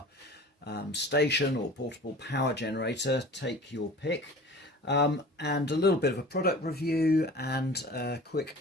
station or portable power generator, take your pick, and a little bit of a product review and a quick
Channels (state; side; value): normal; both; correlation 0.42